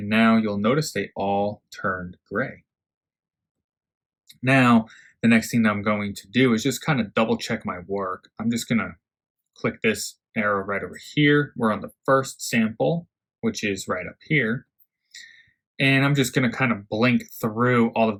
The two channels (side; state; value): both; identical; correlation 1.00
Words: now you'll notice they all turned gray. Now, the next thing that I'm going to do is just kind of double check my work. I'm just going to click this arrow right over here. We're on the first sample, which is right up here. And I'm just going to kind of blink through all of